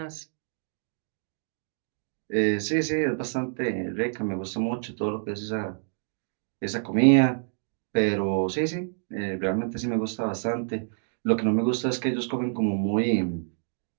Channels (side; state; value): left; silent; digital silence